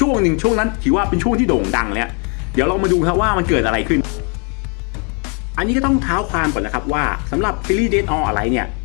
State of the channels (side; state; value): right; quieter; 36.0 dB